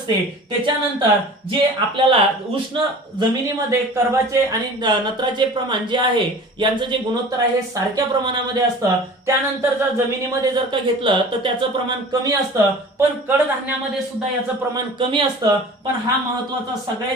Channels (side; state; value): both; normal; correlation 0.41